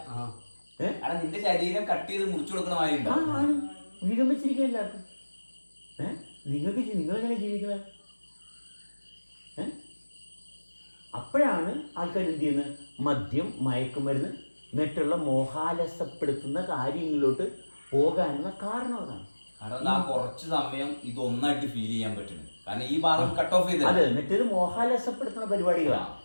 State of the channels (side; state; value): both; inverted; correlation -1.00